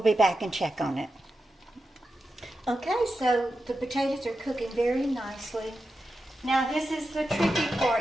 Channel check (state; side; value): normal; both; correlation 0.90